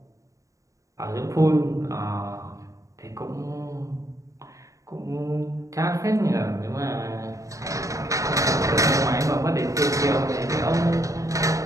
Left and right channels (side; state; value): left; late; 0.16 ms